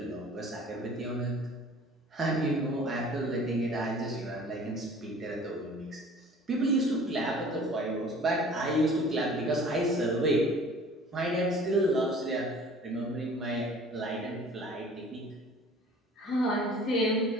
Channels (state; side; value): normal; both; correlation 0.48